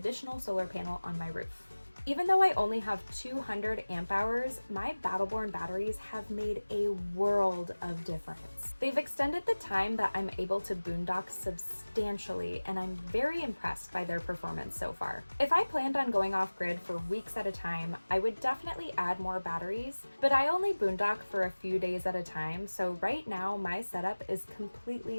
solar panel on my roof. Even though I only have 200 amp hours, my Battle-Born batteries have made a world of difference. They've extended the time that I'm able to boondock substantially, and I'm very impressed by their performance so far. If I planned on going off-grid for weeks at a time, I would definitely add more batteries, but I only boondock for a few days at a time, so right now my setup is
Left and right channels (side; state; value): both; inverted; correlation -1.00